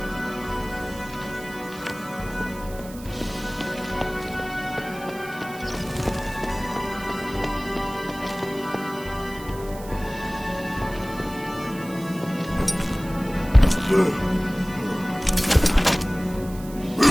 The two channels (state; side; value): noise; right; hiss, 18 dB below the sound